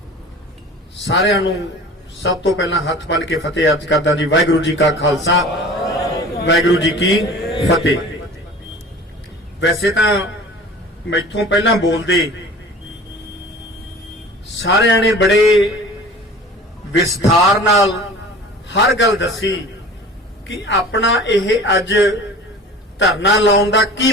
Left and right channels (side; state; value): both; normal; correlation 0.42